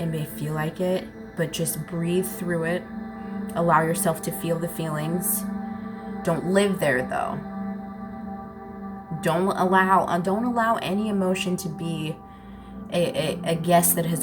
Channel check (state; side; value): identical; both; correlation 1.00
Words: may feel like it, but just breathe through it. Allow yourself to feel the feelings. Don't live there, though. Don't allow any emotion to be a guest that